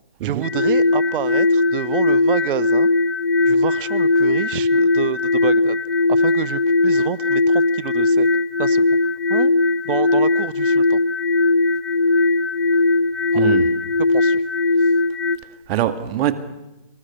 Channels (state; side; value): inverted; both; correlation -0.64